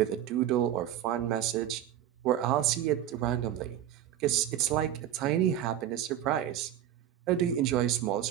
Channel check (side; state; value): left; quieter; 11.2 dB